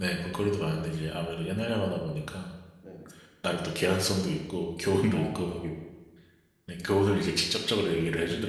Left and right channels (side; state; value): both; identical; correlation 1.00